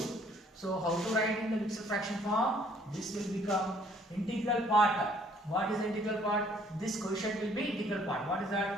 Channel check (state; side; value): normal; both; correlation 0.61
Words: So how to write in the mixed fraction form? This will become integral part. What is the integral part? This quotient will be integral part. What is